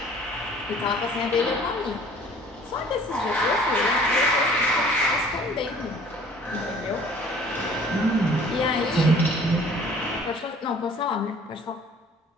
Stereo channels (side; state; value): both; normal; correlation 0.52